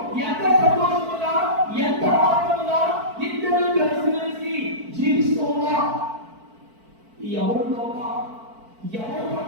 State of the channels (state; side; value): late; left; 4.5 ms